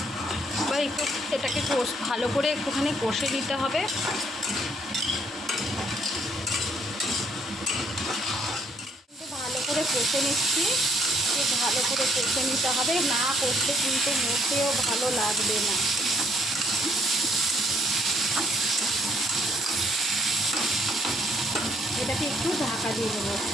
এবার একটু এটাকে ভালো করে একটুখানি কষে নিতে হবে। ভালো করে কষে নিচ্ছি, ভালো করে কষে নিতে হবে, না কষলে কিন্তু মোটেও ভালো লাগবে না। এটাকে একটু ঢাকা দিয়ে দেবো।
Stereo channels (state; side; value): normal; both; correlation 0.67